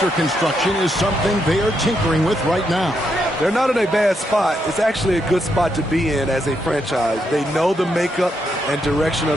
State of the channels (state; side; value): normal; both; correlation 0.80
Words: construction is something they are tinkering with right now. They're not in a bad spot. It's actually a good spot to be in as a franchise. They know the makeup and direction